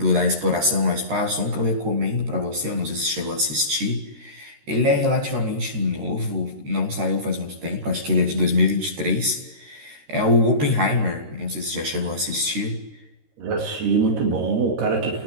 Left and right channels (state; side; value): late; left; 13 ms